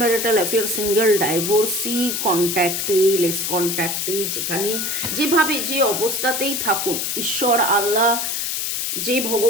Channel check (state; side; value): noise; left; hiss, 1 dB below the sound